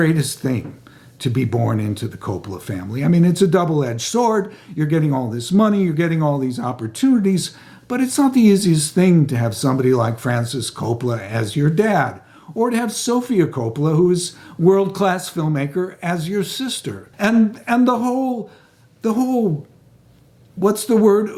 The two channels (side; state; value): both; identical; correlation 1.00